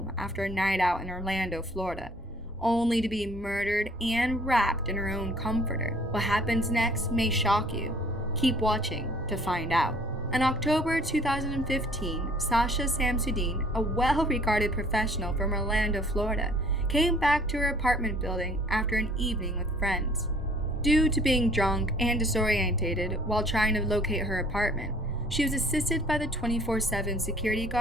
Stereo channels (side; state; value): both; normal; correlation 0.55